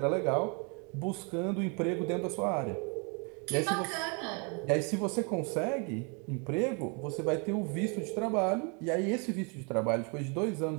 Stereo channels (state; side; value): quieter; left; 34.7 dB